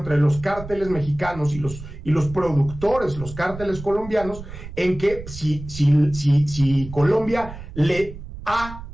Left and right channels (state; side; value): noise; right; rumble, 13 dB below the sound